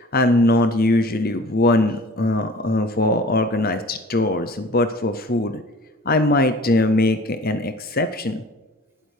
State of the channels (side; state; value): both; normal; correlation 0.46